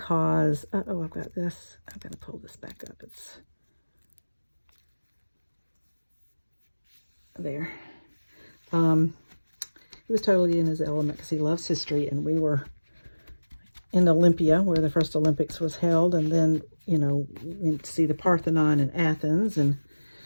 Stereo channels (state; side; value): inverted; both; correlation -1.00